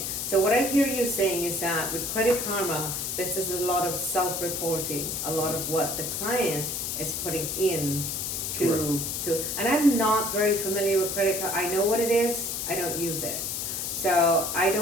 So what I hear you saying is that with Credit Karma, this is a lot of self-reporting, a lot of what the client is putting in and I'm not very familiar with credit card. I know what it is, I don't use it. So I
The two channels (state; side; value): noise; left; hiss, 3 dB below the sound